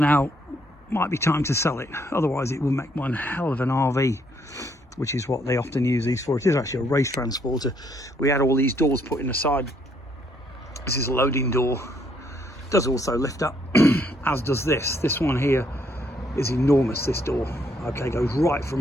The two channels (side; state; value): both; normal; correlation 0.70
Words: might be time to sell it. Otherwise it will make one hell of an RV, which is what they often use these for. It is actually a race transporter. We had all these doors put in the side. This is a loading door. It does also lift up, as does this. This one here is enormous, this door. Okay, goes right